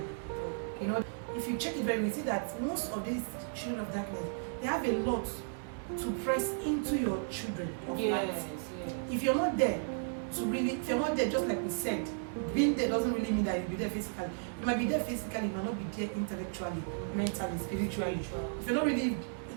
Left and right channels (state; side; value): silent; left; digital silence